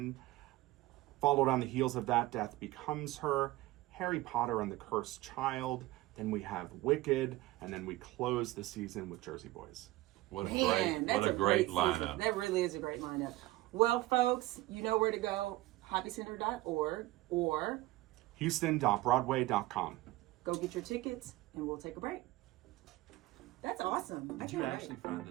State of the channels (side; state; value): left; quieter; 17.9 dB